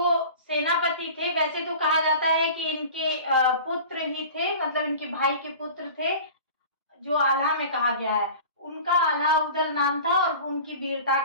सेनापति थे। वैसे तो कहा जाता है कि इनके पुत्र ही थे, मतलब इनके भाई के पुत्र थे, जो आल्हा में कहा गया है। उनका आल्हा उदल नाम था और उनकी वीरता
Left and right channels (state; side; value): inverted; both; correlation -0.39